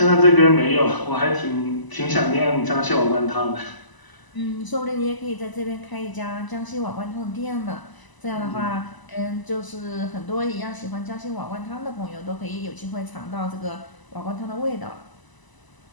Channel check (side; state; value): right; late; 1.0 ms